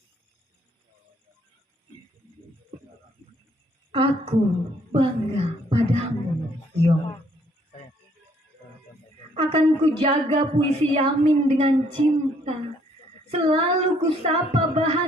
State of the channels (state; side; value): normal; both; correlation 0.65